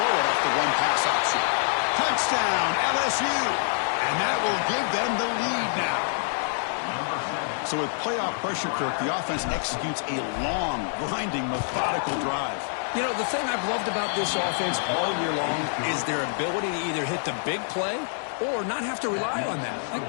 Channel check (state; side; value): silent; right; 61 dB below the other